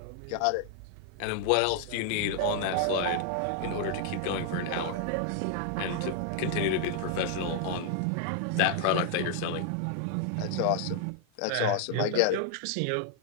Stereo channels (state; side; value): different; both; correlation 0.00